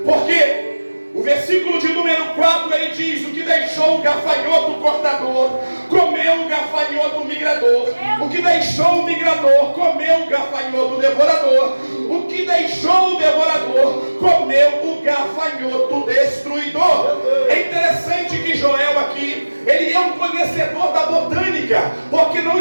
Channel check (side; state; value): both; inverted; correlation -1.00